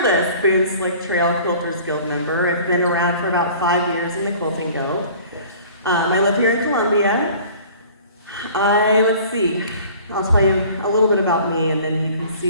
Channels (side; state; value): both; inverted; correlation -0.47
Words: Boone Slick Trail Quilters Guild member. I've been around for about 5 years in the Quilting Guild. I live here in Columbia. Let's see, I'll tell you a little bit about me and then you can